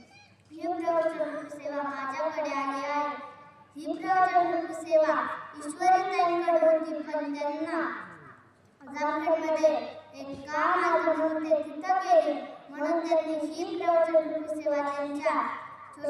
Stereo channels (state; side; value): identical; both; correlation 1.00